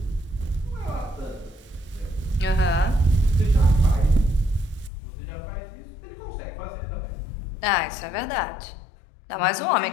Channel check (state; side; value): drops out; right; at 4.9 s